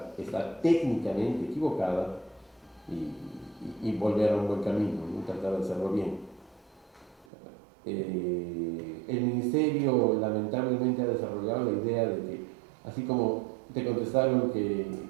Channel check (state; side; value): drops out; left; at 7.2 s